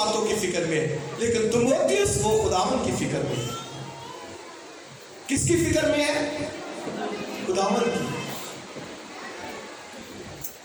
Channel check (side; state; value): both; identical; correlation 1.00